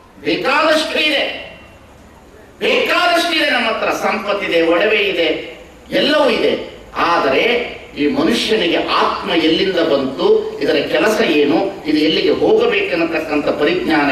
ಬೇಕಾದಷ್ಟು ಇದೆ, ಬೇಕಾದಷ್ಟಿದೆ. ನಮ್ಮ ಹತ್ರ ಸಂಪತ್ತಿದೆ, ಒಡವೆ ಇದೆ, ಎಲ್ಲವೂ ಇದೆ. ಆದರೆ ಈ ಮನುಷ್ಯನಿಗೆ ಆತ್ಮ ಎಲ್ಲಿಂದ ಬಂತು, ಇದರ ಕೆಲಸ ಏನು, ಇದು ಎಲ್ಲಿಗೆ ಹೋಗಬೇಕೆನ್ನತಕ್ಕಂಥ ಪರಿಜ್ಞಾನ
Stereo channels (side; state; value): both; identical; correlation 1.00